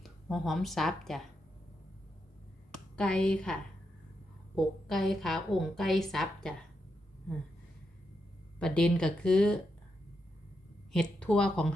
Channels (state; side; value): normal; both; correlation 0.84